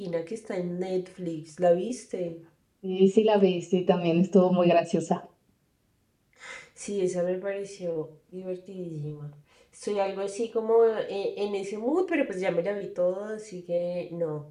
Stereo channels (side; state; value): both; identical; correlation 1.00